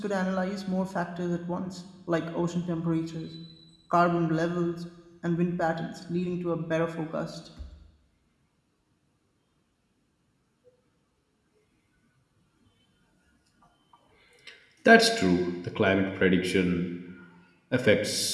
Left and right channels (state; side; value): identical; both; correlation 1.00